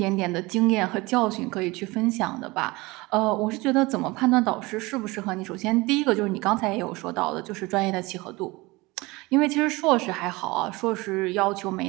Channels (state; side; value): quieter; left; 22.8 dB